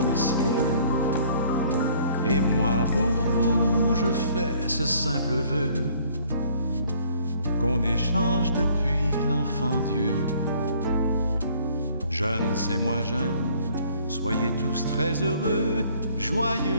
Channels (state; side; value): inverted; both; correlation -0.58